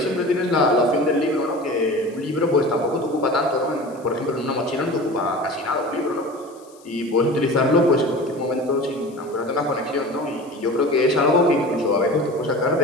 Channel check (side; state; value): left; noise; hiss, 27 dB below the sound